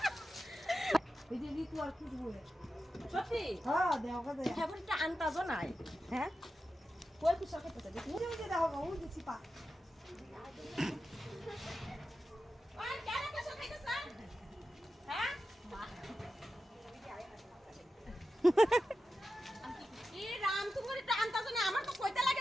এই যে নি তো আর কি বলে সত্যি হ্যাঁ দেখো দে ফেভারিটটা আনতাজও নাই হ্যাঁ কই কুশল খেতে দেখি ওই যে দেখো ওই যে চিপা ওই কেন কুশল খাইতেছ হ্যাঁ কি রাম তুমি এটা আনতাজও না আমার তো কইতে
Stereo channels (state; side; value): normal; both; correlation 0.91